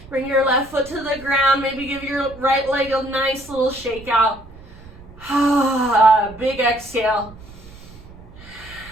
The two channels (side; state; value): right; noise; rumble, 19 dB below the sound